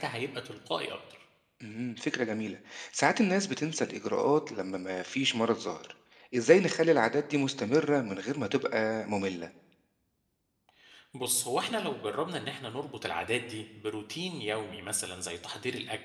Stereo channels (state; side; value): identical; both; correlation 1.00